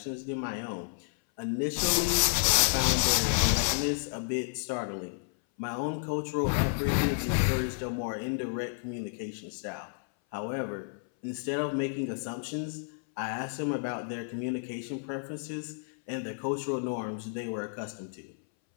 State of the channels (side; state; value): right; silent; 57 dB below the other